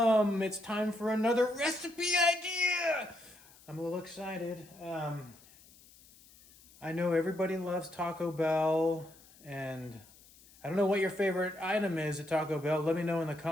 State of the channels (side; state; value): left; noise; hiss, 25 dB below the sound